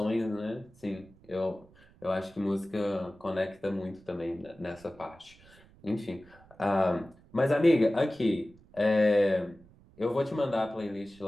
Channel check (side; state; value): right; noise; rumble, 26 dB below the sound